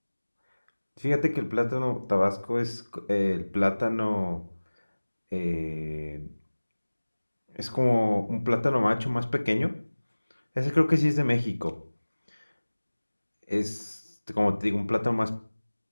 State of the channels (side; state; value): both; inverted; correlation -1.00